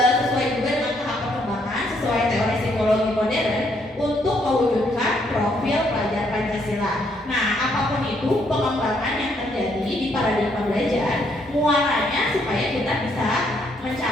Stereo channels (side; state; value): both; normal; correlation 0.71